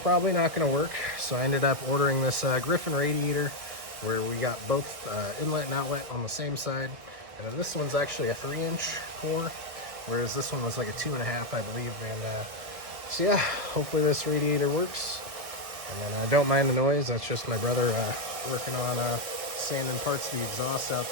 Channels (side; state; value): left; late; 1.4 ms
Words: not going to work, so I ended up ordering this Griffin radiator where we got both inlet and outlet on the same side, and then this one's actually a 3-inch core, whereas this one was like a 2.5, I believe. And so yeah, hopefully this radiator works. And then I don't mind the noise. That's just my brother working on sanding parts of the exhaust out